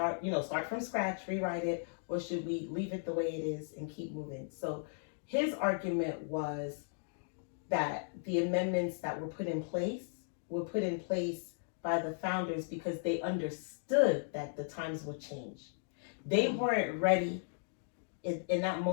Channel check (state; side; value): silent; right; digital silence